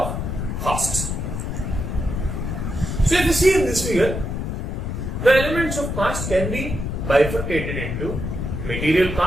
costs. So if you see in this figure, the elements of cost can be bifurcated into material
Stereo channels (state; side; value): noise; left; rumble, 3 dB below the sound